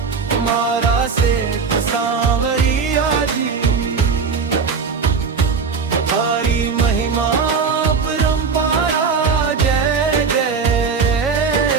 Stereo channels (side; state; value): left; quieter; 5.4 dB